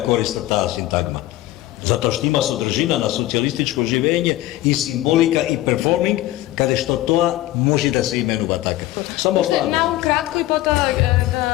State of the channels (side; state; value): right; quieter; 15.9 dB